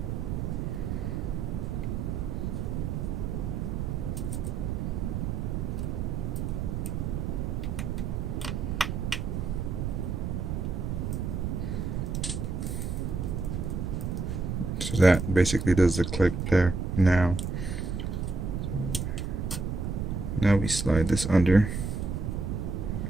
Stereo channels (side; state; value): right; noise; rumble, 2 dB below the sound